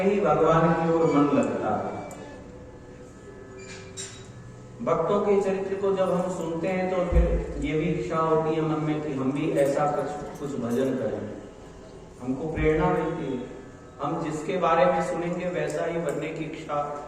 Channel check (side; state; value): both; identical; correlation 1.00